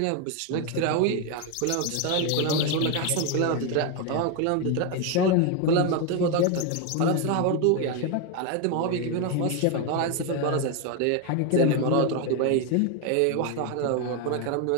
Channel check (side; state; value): both; different; correlation 0.01